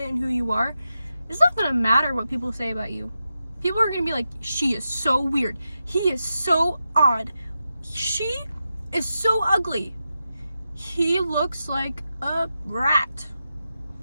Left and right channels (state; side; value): inverted; both; correlation -0.89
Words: in who you are, it's not gonna matter what people say about you. People are gonna be like, she is so weird. He is so odd. She is so ugly. He looks like a rat.